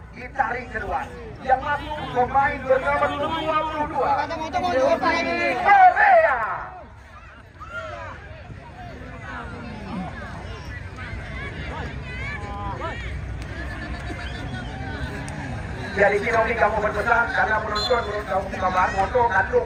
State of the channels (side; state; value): both; identical; correlation 1.00